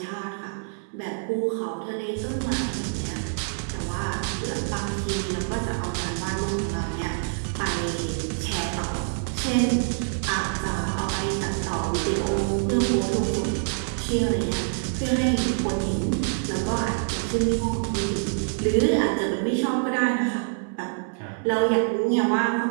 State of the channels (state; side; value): silent; left; 60 dB below the other